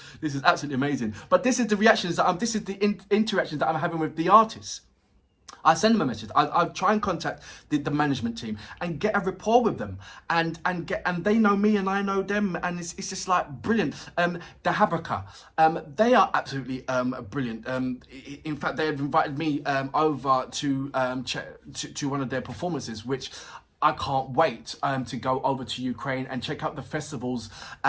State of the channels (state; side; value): identical; both; correlation 1.00